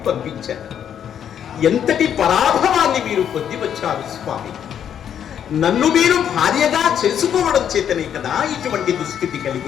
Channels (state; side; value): quieter; right; 9.1 dB